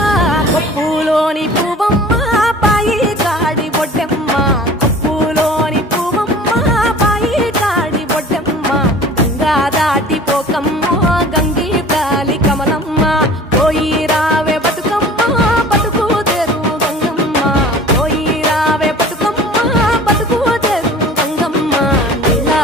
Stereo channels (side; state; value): both; normal; correlation 0.44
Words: కొప్పులోని పువ్వమ్మ పాయి కాడి బొడ్డెమ్మ కొప్పులోని పువ్వమ్మ పాయి కాడి బొడ్డెమ్మ గంగా దాటిపోకమ్మ గంగీ తాలి కమలమ్మ పోయి రావే బతుకమ్మ బతుకు తెరు గంగమ్మ పోయి రావే బతుకమ్మ బతుకు తెరు గంగమ్మ నీలా